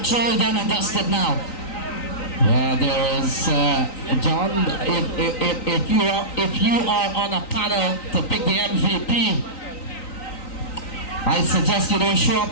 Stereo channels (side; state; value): right; late; 3.9 ms